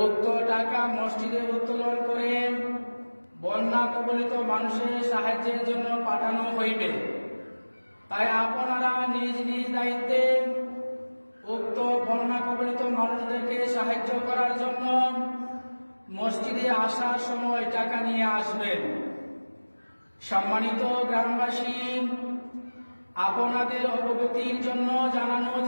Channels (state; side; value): inverted; both; correlation -1.00